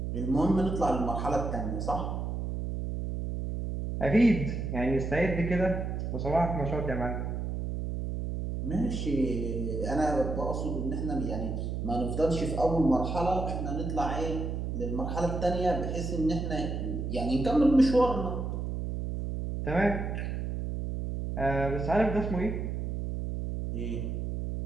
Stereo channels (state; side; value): noise; right; hum, 3 dB below the sound